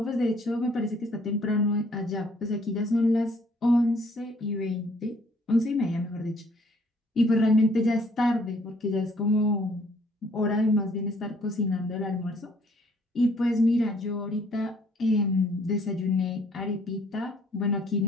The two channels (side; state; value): both; normal; correlation 0.62